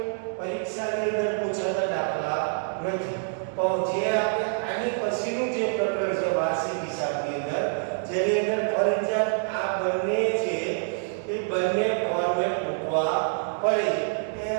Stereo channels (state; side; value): silent; left; digital silence